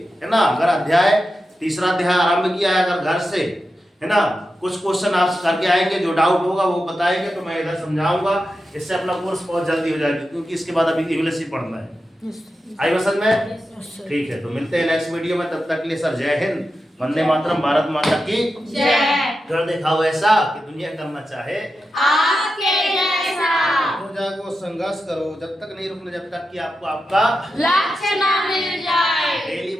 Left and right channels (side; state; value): both; normal; correlation 0.90